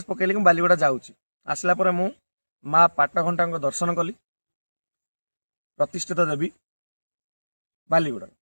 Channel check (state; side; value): inverted; both; correlation -1.00